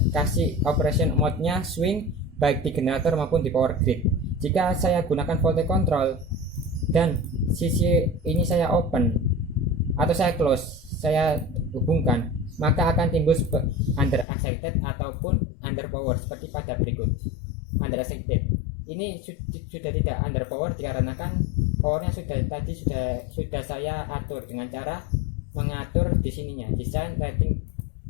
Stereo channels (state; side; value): drops out; right; at 14.2 s